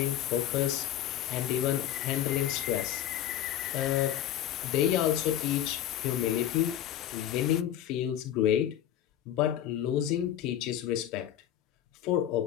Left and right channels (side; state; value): right; quieter; 11.3 dB